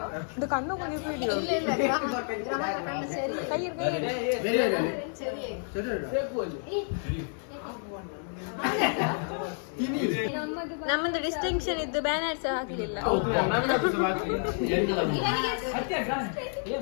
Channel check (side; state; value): right; silent; 58 dB below the other